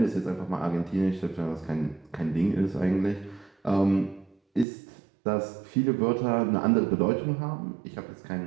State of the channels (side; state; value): left; drops out; at 4.7 s